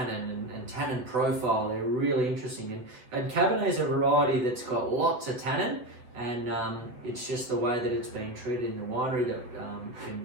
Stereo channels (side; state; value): left; late; 7.9 ms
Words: and tannin profile. They're really interesting. And Cabernet is a variety that's got lots of tannin, and it's just the way that it's being treated in the winery that can